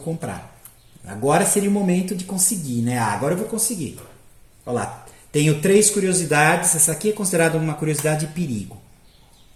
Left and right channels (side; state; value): both; identical; correlation 1.00